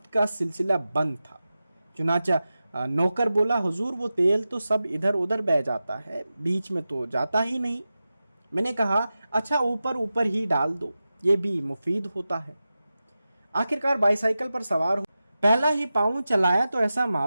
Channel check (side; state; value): both; inverted; correlation -0.93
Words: का सिलसिला बंद था। चुनाचा नौकर बोला, हुजूर वो तेल तो सब इधर उधर बह जाता है, बीच में तो जाता ही नहीं। मैंने कहा, अच्छा ऊपर ऊपर ही डाल दो, ये भी मुफीद होता है। आखिरकार बाईसाइकिल पर सवार हो पहला ही पाँव चलाया तो ऐसा